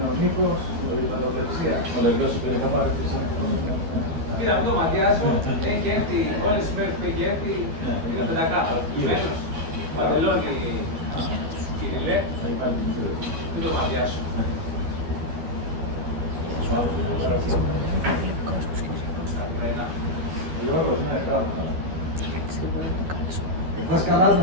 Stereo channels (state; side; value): late; left; 12 ms